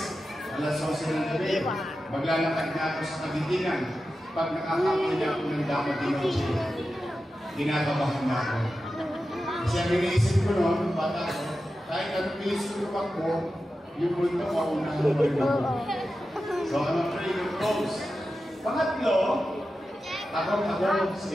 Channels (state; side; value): normal; both; correlation 0.92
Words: alas 11 ng gabi. Maglalakad na ako sa Kagitingan. Pag nakakapin niya ako ng dapat din ako siya, ginagabahan na ako. Kasi ang iniisip ko noon, bata ko, kahit anong iniisip ko ako, yung punto ko, unahan mo rin ako. So, I'm afraid of those. Pangatlo, takot ako sa